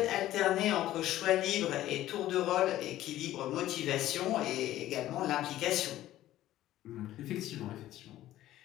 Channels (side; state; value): right; quieter; 14.1 dB